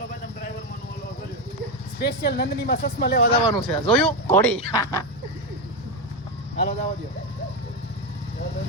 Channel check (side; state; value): both; normal; correlation 0.10